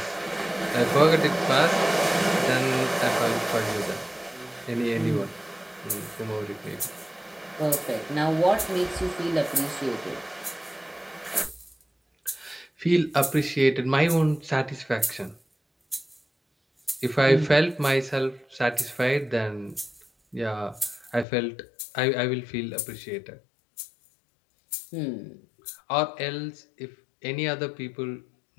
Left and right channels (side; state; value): right; drops out; at 21.2 s